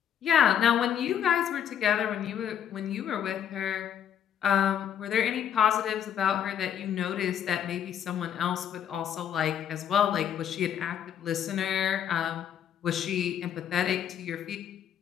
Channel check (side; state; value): right; quieter; 9.2 dB